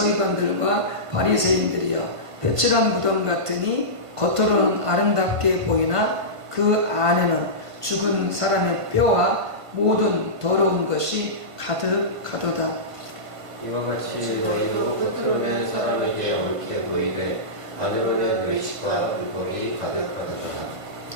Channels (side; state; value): left; late; 1.5 ms